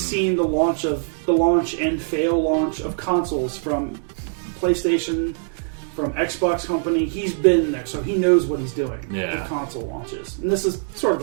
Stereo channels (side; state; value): left; silent; 64 dB below the other